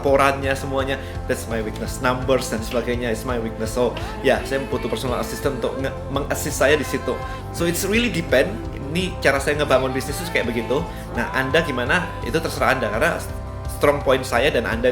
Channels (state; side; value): identical; both; correlation 1.00